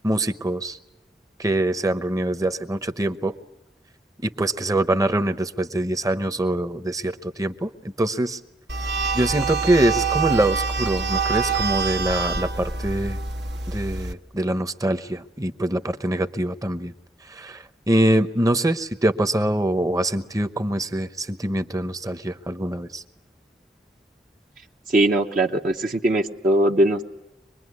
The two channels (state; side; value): normal; both; correlation 0.70